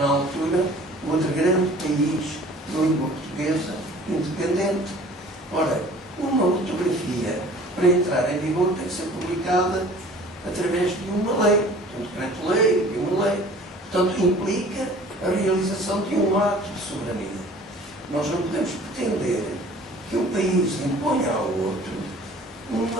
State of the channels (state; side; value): normal; both; correlation 0.48